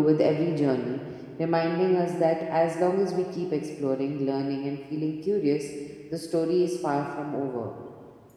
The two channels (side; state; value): both; identical; correlation 1.00